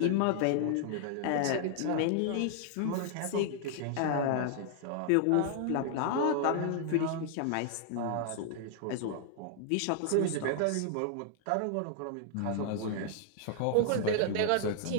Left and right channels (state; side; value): different; both; correlation 0.00